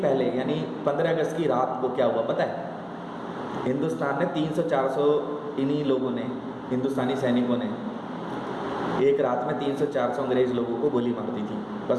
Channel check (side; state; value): both; identical; correlation 1.00